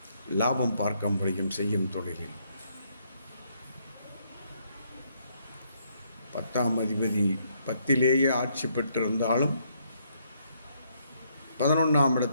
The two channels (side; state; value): both; inverted; correlation -0.72